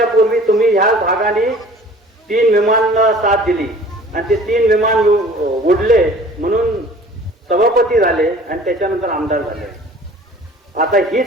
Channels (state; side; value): normal; both; correlation 0.48